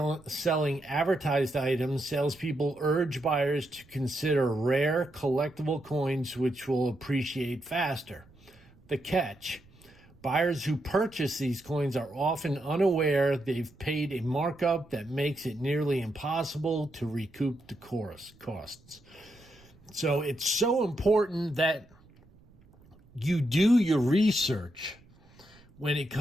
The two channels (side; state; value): right; noise; rumble, 27 dB below the sound